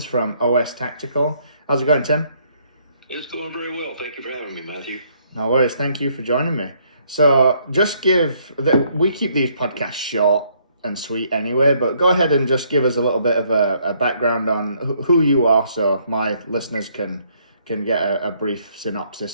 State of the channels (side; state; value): both; inverted; correlation -0.68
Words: from OSS Tactical. How's it going, Tim? It's going very well. Thank you for having me, Matthew. No worries. Thank you for joining me. So we keep these podcasts short and sweet anyway, but go ahead and just give us a little bit of a background on who you are so my listeners can get a brief